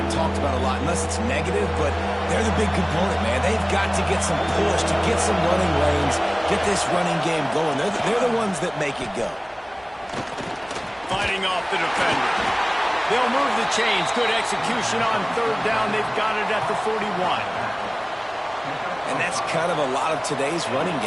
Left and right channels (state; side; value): identical; both; correlation 1.00